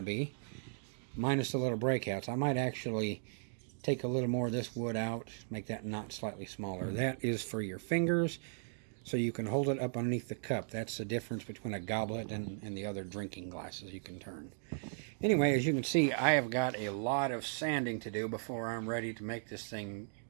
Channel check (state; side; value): silent; left; digital silence